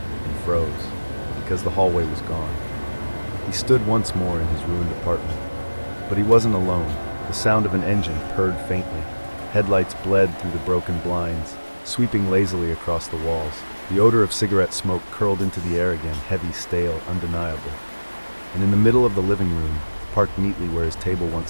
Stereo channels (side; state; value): both; inverted; correlation -1.00